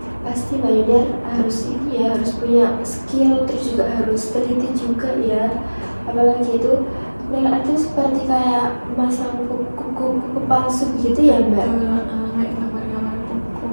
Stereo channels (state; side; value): inverted; both; correlation -1.00